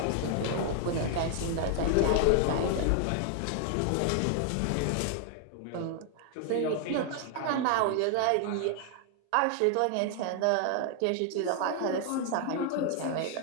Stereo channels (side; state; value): both; different; correlation 0.00